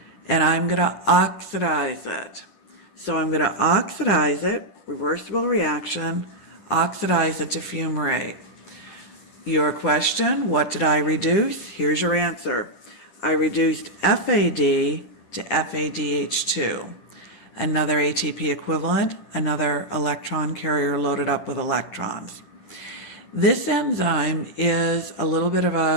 and I'm going to oxidize it. So I'm going to oxidize it, reversible reaction, oxidize it to fumarate. Your question, what did I reduce? Here's your answer. I reduced FAD to FADH2. Another ATP equivalent, another electron carrier loaded up with electrons. This enzyme is a little bit of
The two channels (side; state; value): right; late; 9.7 ms